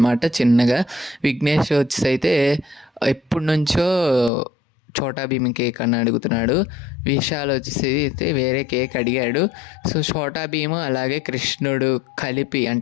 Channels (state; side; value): drops out; right; at 4.3 s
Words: చిన్నగా. విఘ్నేష్ వచ్చేసి అయితే ఎప్పటి నుంచో చోటా భీమ్ కేక్ అని అడుగుతున్నాడు. విశాల్ వచ్చేసి అయితే వేరే కేక్ అడిగాడు. సో చోటా భీమ్ అలాగే కృష్ణుడు కలిపి,